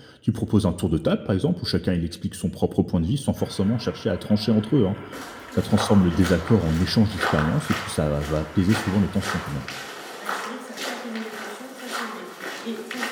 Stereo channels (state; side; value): identical; both; correlation 1.00